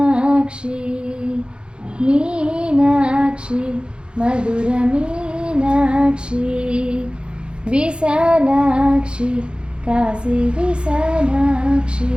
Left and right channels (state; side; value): late; left; 0.054 ms